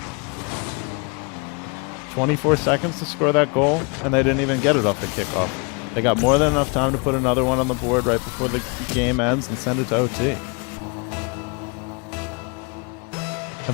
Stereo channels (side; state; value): right; quieter; 32.5 dB